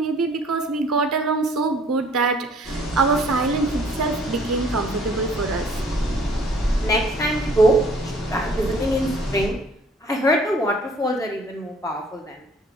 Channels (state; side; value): normal; both; correlation 0.56